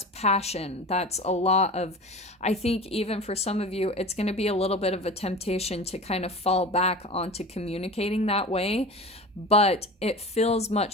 passion. That's a lot of, I think even for some of you, it's going to be a little bit of a temptation to kind of fall back onto communicating that way, but it feels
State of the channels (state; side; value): normal; both; correlation 0.34